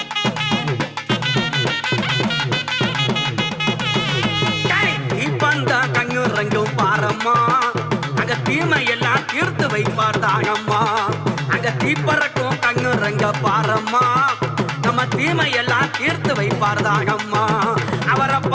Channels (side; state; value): both; identical; correlation 1.00